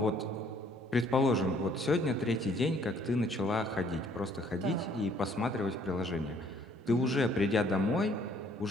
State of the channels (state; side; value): normal; both; correlation 0.61